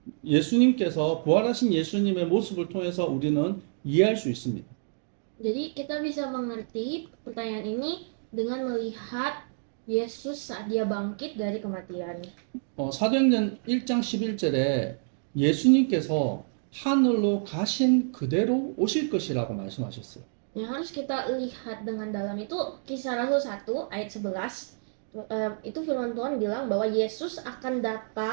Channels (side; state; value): left; silent; digital silence